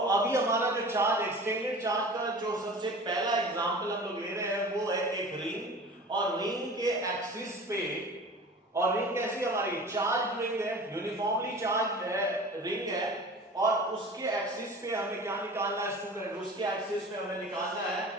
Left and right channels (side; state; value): both; normal; correlation 0.39